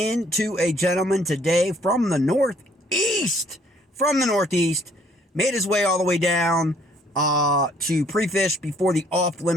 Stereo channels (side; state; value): both; normal; correlation 0.63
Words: a gentleman today from the Northeast. Made his way all the way down to pre-fish before the